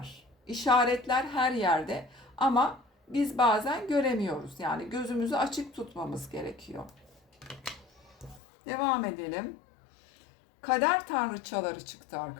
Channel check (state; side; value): drops out; right; at 8.4 s